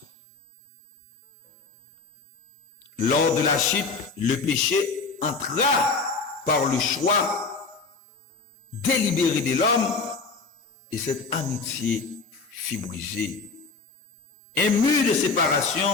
Lors de la chute, le péché entra par le choix délibéré de l'homme et cette amitié fut brisée. Un mur de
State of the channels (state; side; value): quieter; right; 4.5 dB